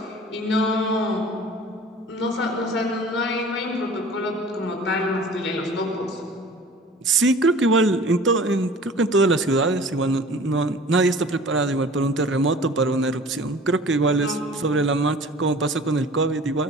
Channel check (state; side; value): normal; both; correlation 0.44